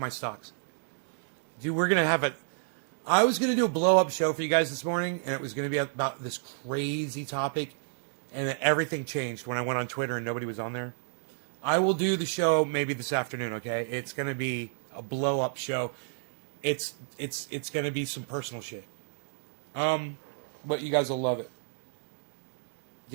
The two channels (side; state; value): left; silent; digital silence